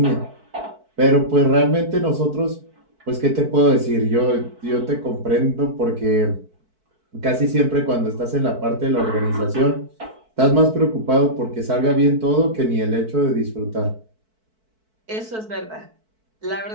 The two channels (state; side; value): late; left; 4.6 ms